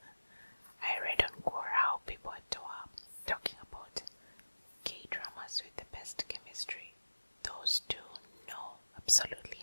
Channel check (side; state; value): both; inverted; correlation -1.00